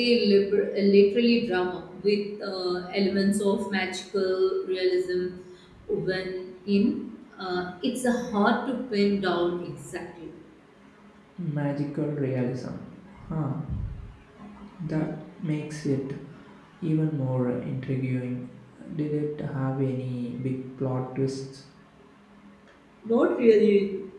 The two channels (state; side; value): identical; both; correlation 1.00